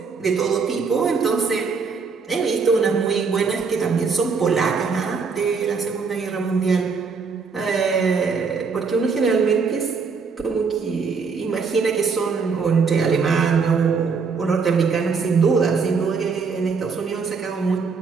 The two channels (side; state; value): left; quieter; 5.2 dB